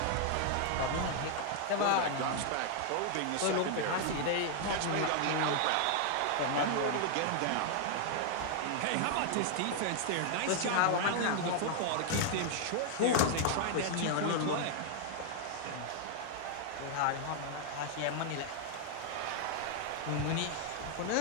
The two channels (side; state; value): both; different; correlation 0.00